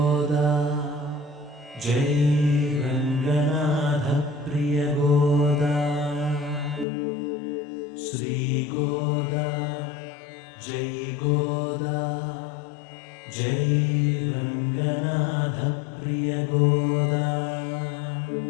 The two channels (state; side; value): drops out; right; at 6.9 s